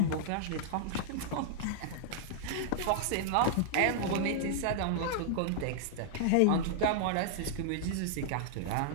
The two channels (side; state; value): both; different; correlation -0.01